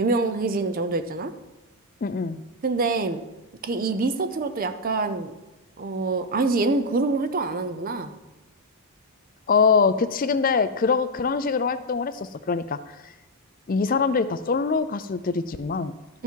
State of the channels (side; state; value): both; normal; correlation 0.01